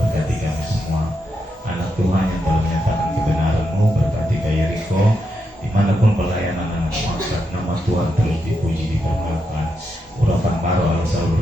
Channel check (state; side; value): normal; both; correlation 0.83